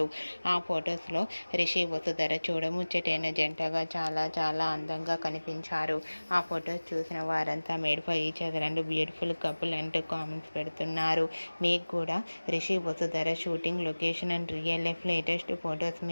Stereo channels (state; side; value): inverted; both; correlation -1.00